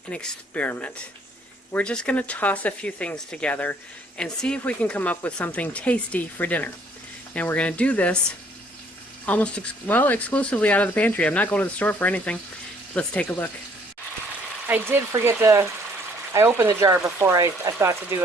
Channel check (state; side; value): normal; both; correlation 0.62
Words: an experiment. We're just going to toss a few things together and see if we can come up with something tasty for dinner. And we're going to do this almost exclusively out of the pantry. I'm not going to the store for anything. Let's take a look. I did forget I opened the jar before I thought to do